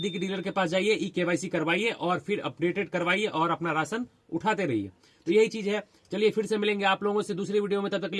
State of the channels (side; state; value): both; identical; correlation 1.00